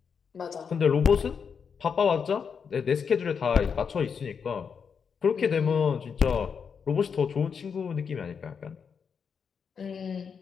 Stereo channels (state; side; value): quieter; right; 6.4 dB